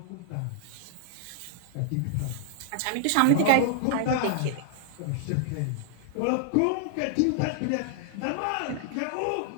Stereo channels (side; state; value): both; different; correlation -0.01